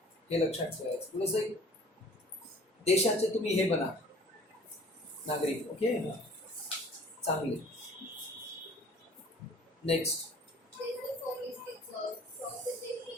हे लक्षात ठेवायचं. थोडंसं देशाचे तुम्ही हे बना नागरिक. ओके चांगले. नेक्स्ट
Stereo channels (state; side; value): normal; both; correlation 0.49